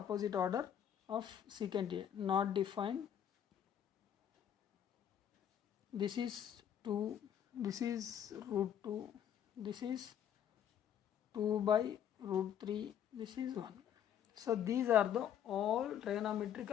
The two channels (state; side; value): quieter; right; 9.5 dB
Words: order of secant A. Not defined. This is 2. This is root 2. This is 2 by root 3. This is 1. So these are the all